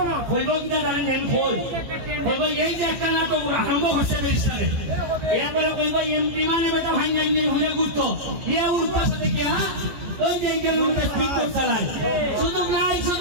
হইব কিনা জানি নেন হইব, এই যে একটা নাটক আরম্ভ হচ্ছে ব্যারিস্টারে, এরপরে কইব এমপি মানে বেটা ভাঙ্গা নিয়ে ঘুরে ঘুরতো, এ উঠবার সাথে কি হ্যাঁ ওই যে কিলোমিটার স্পিড বোট চালায়। সুযোগ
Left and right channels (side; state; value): left; late; 14 ms